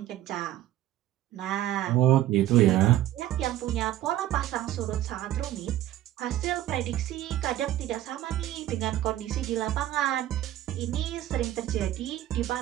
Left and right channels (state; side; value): quieter; left; 13.7 dB